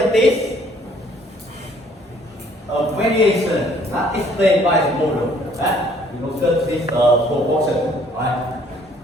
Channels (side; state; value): both; normal; correlation 0.60